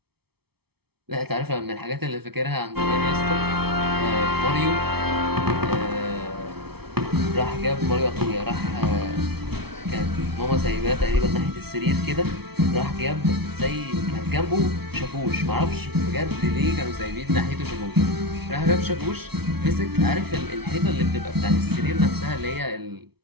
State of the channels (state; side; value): late; left; 0.96 ms